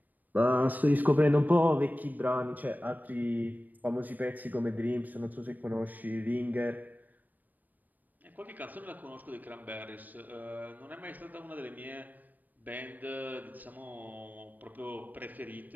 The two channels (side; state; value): left; late; 0.085 ms